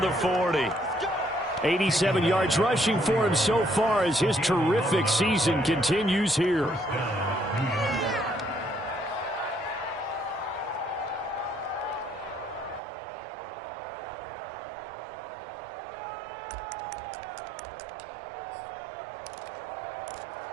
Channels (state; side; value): drops out; left; at 12.8 s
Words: the 40. 87 yards rushing for him so far as his terrific season continues here.